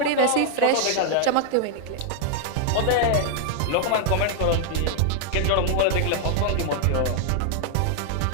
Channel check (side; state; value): both; different; correlation -0.01